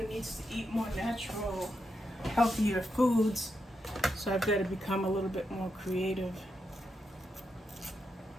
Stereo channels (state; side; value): normal; both; correlation 0.84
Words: needs to eat more natural, healthier foods, so I've got to become a little bit more creative.